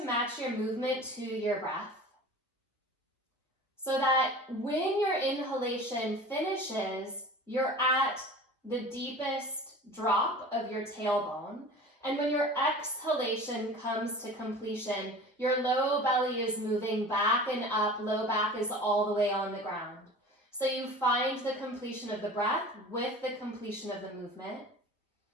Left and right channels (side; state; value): both; normal; correlation 0.39